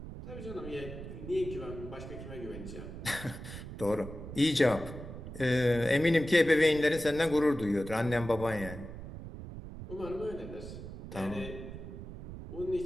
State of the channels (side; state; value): right; noise; rumble, 10 dB below the sound